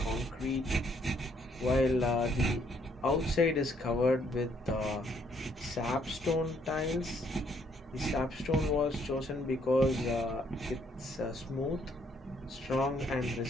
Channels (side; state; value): both; normal; correlation 0.68